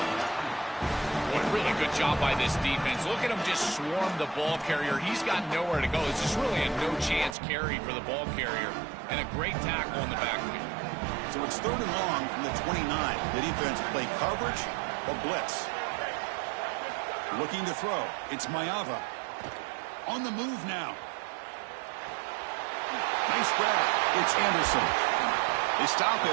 What a really good job by this defense. Look at him just swarm the ball carrier. He's got nowhere to go. It's just really a no-chance carry for the ball carrier, and a great tackle in the backfield. So it's 3rd and long from the 29. The defense play coverage or blitz. Looking to throw. It's Mayava. On the move now. Nice grab. It's Anderson. They stop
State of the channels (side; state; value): left; drops out; at 7.4 s